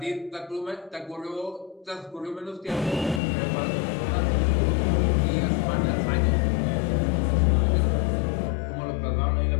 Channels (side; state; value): right; drops out; at 3.2 s